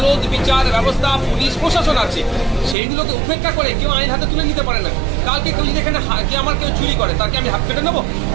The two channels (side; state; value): left; drops out; at 2.8 s